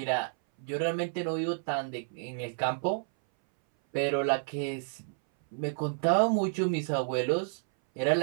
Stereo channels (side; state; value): left; silent; 58 dB below the other